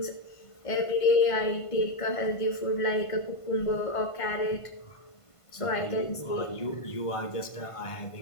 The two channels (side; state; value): right; late; 1.5 ms